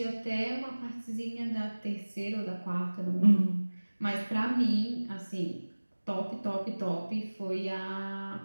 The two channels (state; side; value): inverted; both; correlation -1.00